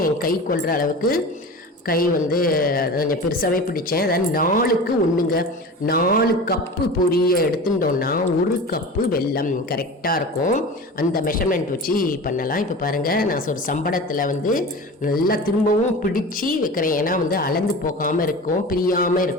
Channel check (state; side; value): normal; both; correlation 0.33